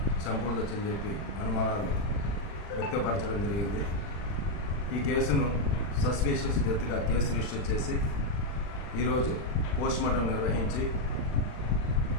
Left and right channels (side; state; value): right; late; 40 ms